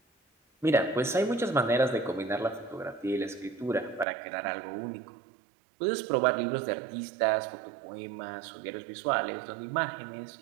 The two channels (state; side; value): drops out; left; at 4.0 s